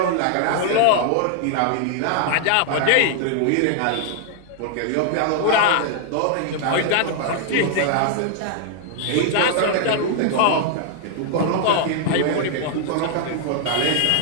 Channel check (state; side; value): different; both; correlation 0.00